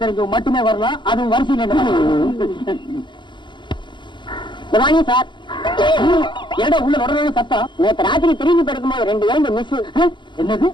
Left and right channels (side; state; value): right; late; 0.23 ms